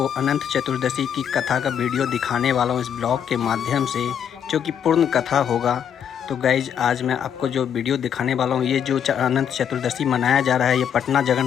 अनंत चतुर्दशी की कथा का वीडियो दिखाने वाला हूँ इस ब्लॉग के माध्यम से, जो कि पूर्ण कथा होगा। तो गाइज आज मैं आपको जो वीडियो दिखाने वाला हूँ, ये जो अनंत चतुर्दशी मनाया जा रहा है, ये पटना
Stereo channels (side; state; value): right; quieter; 8.6 dB